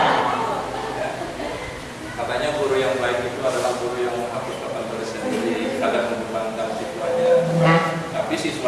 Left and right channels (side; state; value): both; identical; correlation 1.00